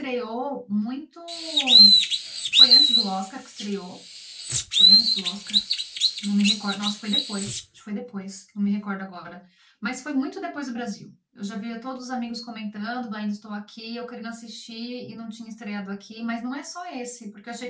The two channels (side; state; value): both; identical; correlation 1.00